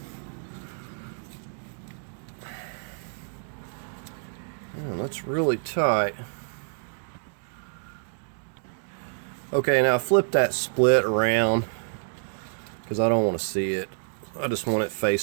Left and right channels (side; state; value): left; silent; digital silence